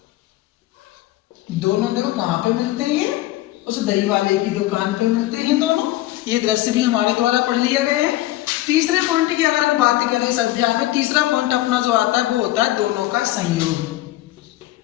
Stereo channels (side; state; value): right; quieter; 16.4 dB